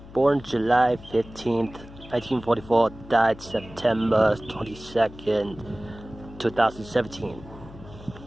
Born July 15th, 1944, died September 22nd, 2017.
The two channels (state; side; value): noise; left; hum, 18 dB below the sound